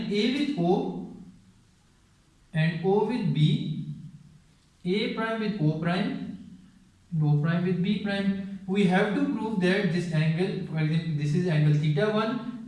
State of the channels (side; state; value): both; identical; correlation 1.00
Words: A with O and O with B, A prime with O prime, and O prime with B prime. We have to prove that this angle, for example, this is angle theta 1